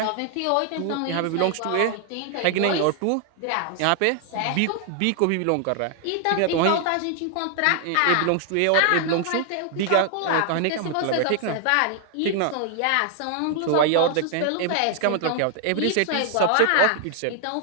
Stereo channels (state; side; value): different; both; correlation 0.00